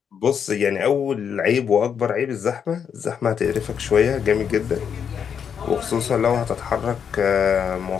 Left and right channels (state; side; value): quieter; right; 7.5 dB